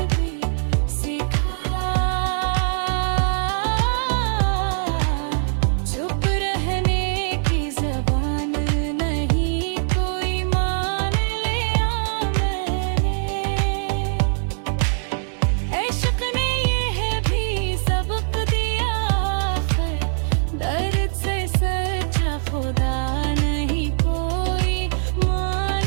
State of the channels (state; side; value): silent; left; digital silence